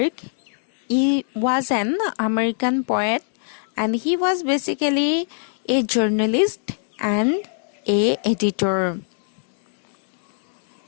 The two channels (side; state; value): right; silent; digital silence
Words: was an American poet and he was basically a journalist and a editor.